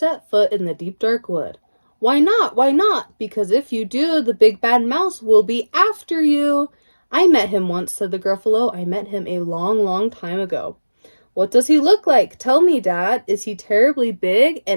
foot in the deep dark wood. Why not? Why not? Because if you do, the big bad mouse will be after you. I met him once, said the Gruffalo. I met him a long, long time ago. What does he look like? Tell me, Dad. Is he terribly big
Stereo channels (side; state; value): both; inverted; correlation -1.00